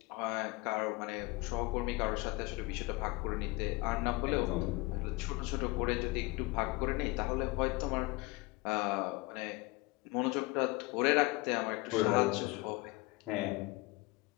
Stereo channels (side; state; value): right; quieter; 22.7 dB